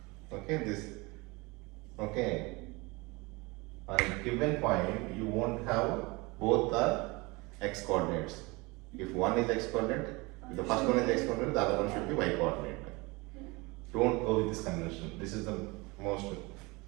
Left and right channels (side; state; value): left; quieter; 25.0 dB